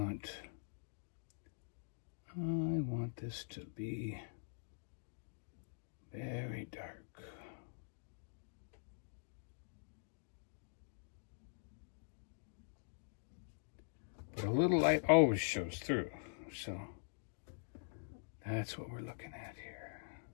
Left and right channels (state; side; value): silent; right; digital silence